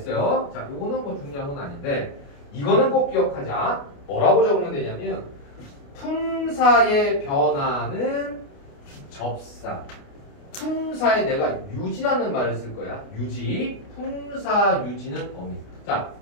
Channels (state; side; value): late; right; 29 ms